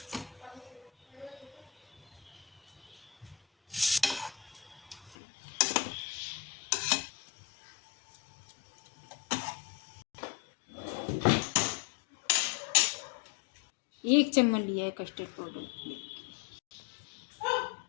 एक चम्मच लिया है कस्टर्ड पाउडर,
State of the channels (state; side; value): drops out; right; at 5.2 s